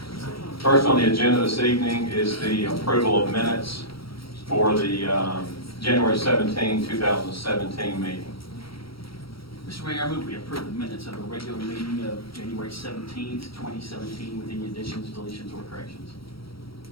First on the agenda this evening is the approval of minutes for the January 17, 2017 meeting. Mr. Mayor, I move we approve the minutes of the regular meeting of January 17th, 2017 with any additions, deletions, or corrections.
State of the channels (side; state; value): right; late; 0.75 ms